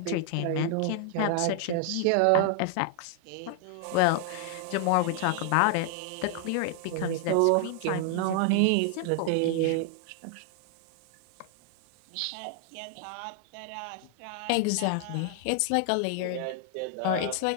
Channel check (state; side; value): different; both; correlation 0.00